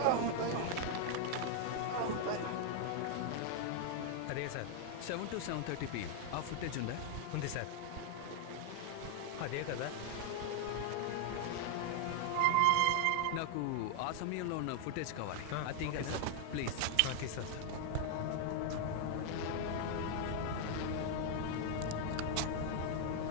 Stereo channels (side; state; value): both; different; correlation 0.00